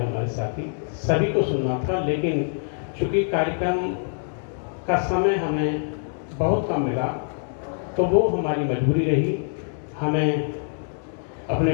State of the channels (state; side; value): silent; right; 62 dB below the other